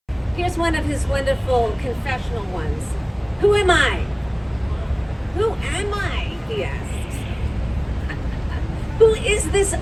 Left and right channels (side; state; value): both; identical; correlation 1.00